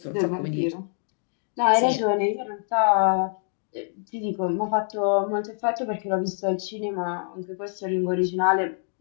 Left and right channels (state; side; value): silent; right; 61 dB below the other